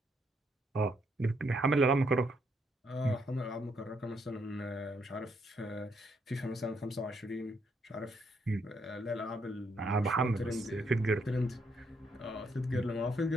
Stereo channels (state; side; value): normal; both; correlation 0.74